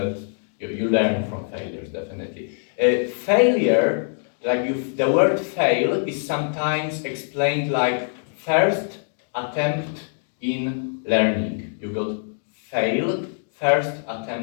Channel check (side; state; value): right; silent; digital silence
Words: you learn from failures, definitely. Failure, the word fail is sometimes explained like first attempt in learning. You got fail, first